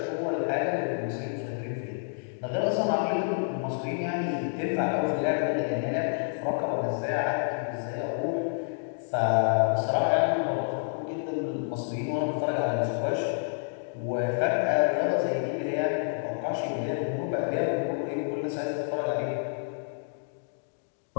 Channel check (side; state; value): right; silent; digital silence